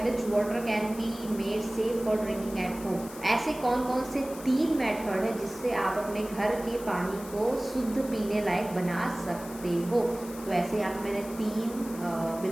which water can be made safe for drinking at home. ऐसे कौन कौन से 3 मेथड है जिससे आप अपने घर के पानी को शुद्ध पीने लायक बना सकते हो। तो ऐसे यहाँ पे मैंने 3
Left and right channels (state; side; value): noise; left; hiss, 16 dB below the sound